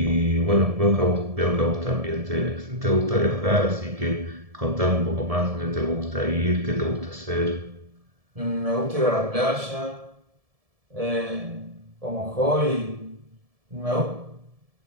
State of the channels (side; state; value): left; late; 1.7 ms